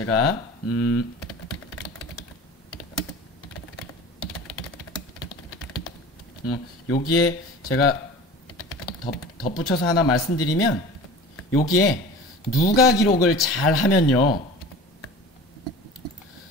여기에 제가 덧붙여서 하나 말씀드리면 여기에 누가 기록을 잘 하면요.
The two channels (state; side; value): normal; both; correlation 0.38